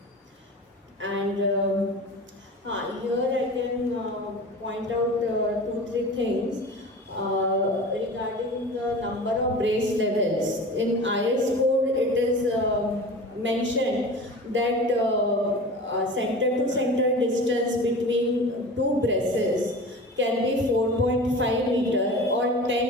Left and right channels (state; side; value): normal; both; correlation 0.35